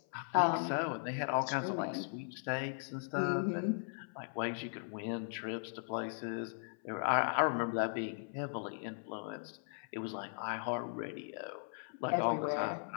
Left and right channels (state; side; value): silent; right; 52 dB below the other